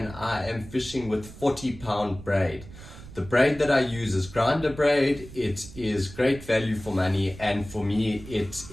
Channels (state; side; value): noise; right; rumble, 16 dB below the sound